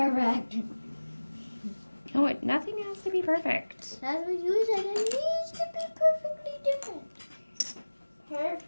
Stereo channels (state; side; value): inverted; both; correlation -1.00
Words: No, nothing has to be perfect. That's what you said. It needs to be perfectly different.